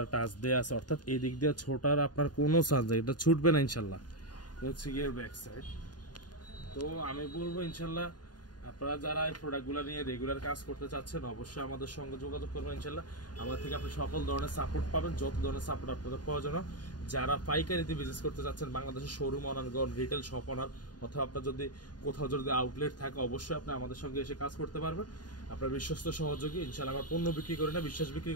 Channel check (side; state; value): right; late; 0.70 ms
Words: টাচ দেওয়া আছে, অর্থাৎ এই দিক দিয়ে ছোটার আপনার কোনো চান্স নেই, এটা ছুটবে না ইনশাল্লাহ। হচ্ছে গিয়ে ব্যাক সাইড। তো আমি বলবো ইনশাল্লাহ আপনারা যারা এই প্রোডাক্টগুলো নিয়ে রেগুলার কাজ করতে চাচ্ছেন অবশ্যই আমাদের সঙ্গে যোগাযোগ করবেন। ইনশাল্লাহ আমাদের থেকে আপনি সকল ধরনের সাপোর্ট পাবেন, যত ধরনের সাপোর্ট আপনাদের প্রয়োজন। যারা পাইকারিতে বিজনেস করতে চাচ্ছেন, বাংলাদেশের showroom honour, retail shop honour, অথবা আপনার যদি কোথাও যদি আউটলেট থাকে, অবশ্যই আপনি আমাদের সঙ্গে এসে কাজ করতে পারবেন। আপনার বিশ্বস্ত সহযোগী। ইনশাল্লাহ আমার পণ্য বিক্রি করি না, বিশ্বাস বিক্রি